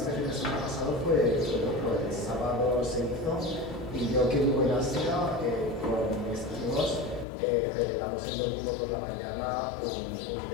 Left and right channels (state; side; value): drops out; right; at 7.2 s